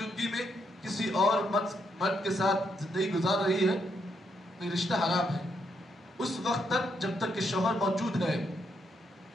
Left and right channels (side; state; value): both; normal; correlation 0.77